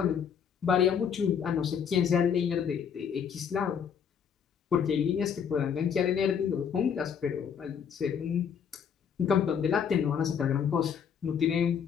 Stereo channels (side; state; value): right; quieter; 7.5 dB